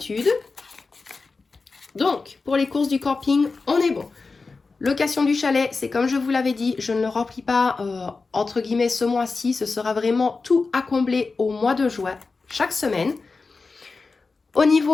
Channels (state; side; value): quieter; right; 4.1 dB